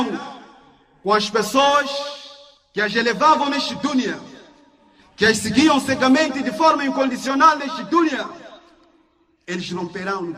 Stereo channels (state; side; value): identical; both; correlation 1.00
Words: com as pessoas que as elevavam neste dunya, que as seguiam cegamente de forma incondicional neste dunya. Eles romperão no